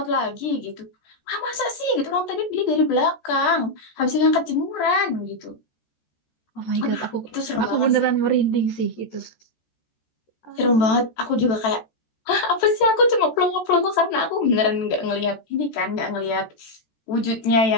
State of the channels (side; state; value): right; late; 14 ms